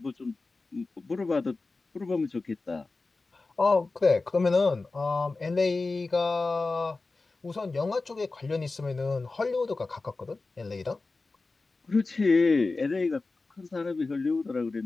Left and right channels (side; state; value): right; quieter; 3.6 dB